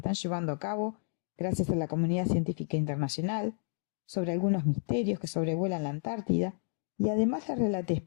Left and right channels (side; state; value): right; silent; 57 dB below the other